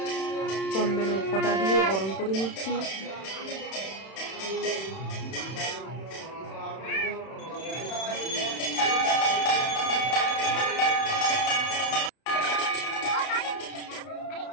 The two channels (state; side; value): late; right; 31 ms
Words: চন্দনের ফোঁটা দিয়ে বরণ করে নিচ্ছি।